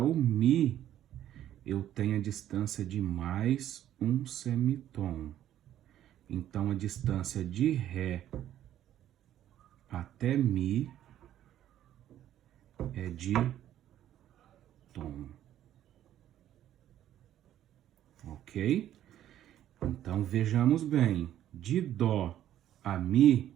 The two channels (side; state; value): left; quieter; 11.8 dB